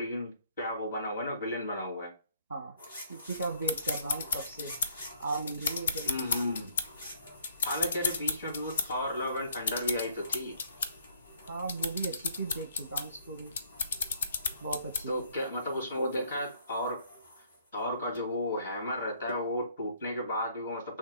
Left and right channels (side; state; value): both; inverted; correlation -0.63